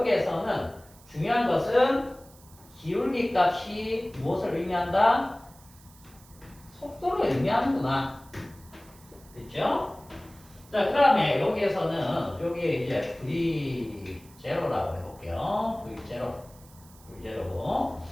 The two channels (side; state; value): right; noise; hiss, 25 dB below the sound